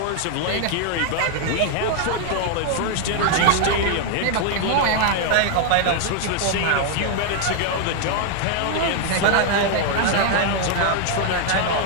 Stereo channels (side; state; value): both; different; correlation 0.00